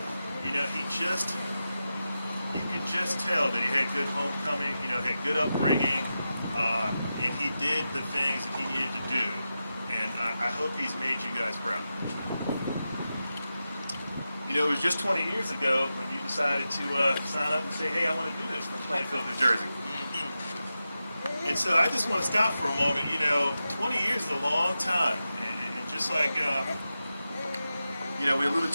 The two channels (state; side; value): inverted; both; correlation -0.91